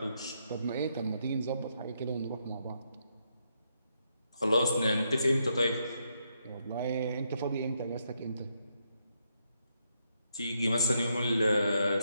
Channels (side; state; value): both; inverted; correlation -0.78